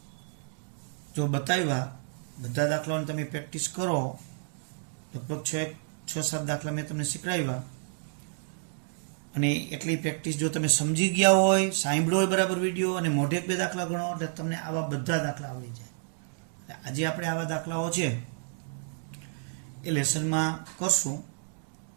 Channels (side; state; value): left; silent; digital silence